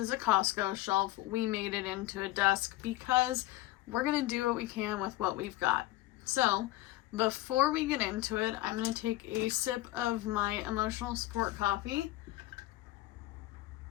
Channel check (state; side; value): quieter; right; 17.0 dB